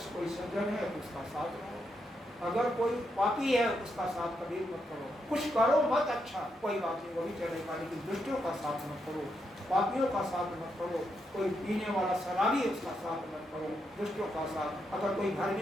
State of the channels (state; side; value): normal; both; correlation 0.81